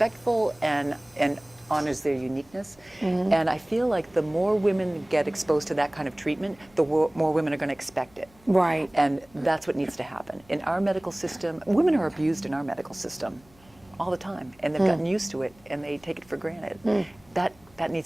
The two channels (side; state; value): left; noise; hum, 29 dB below the sound